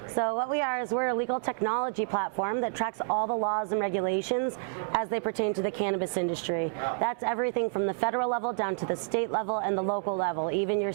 So what we are is we're a legal technology platform that tracks all the laws and regulations as they pertain to the cannabis industry. That's everything from the federal level down to the state level and the local level, even your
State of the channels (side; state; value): left; silent; 58 dB below the other